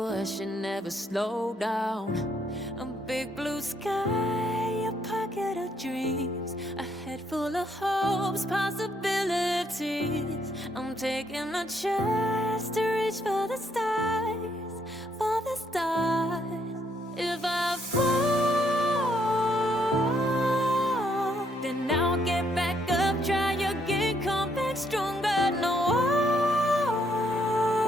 never slow down. A big blue sky, a pocket of dreams, a head full of hopes, possibilities. I'm taking a chance to reach for the stars, for the stars. If I fall, then I'll get back up, try again, come back stronger. No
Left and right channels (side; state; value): both; normal; correlation 0.72